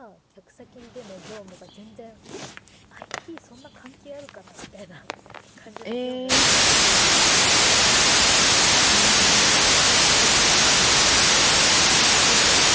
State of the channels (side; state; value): both; identical; correlation 1.00